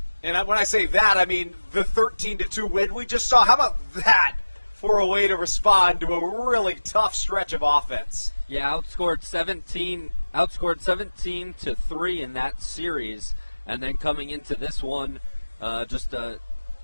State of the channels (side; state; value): both; inverted; correlation -1.00